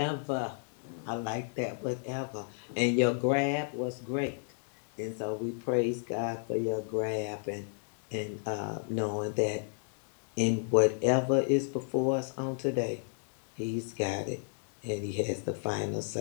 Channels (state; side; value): silent; right; digital silence